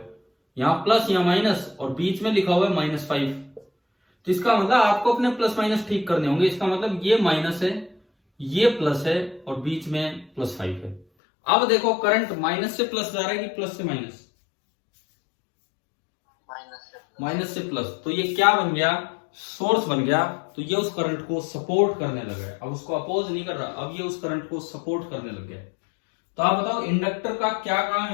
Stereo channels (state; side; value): drops out; right; at 11.1 s